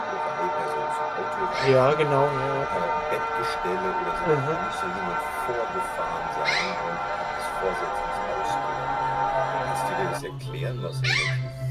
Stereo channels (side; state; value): both; identical; correlation 1.00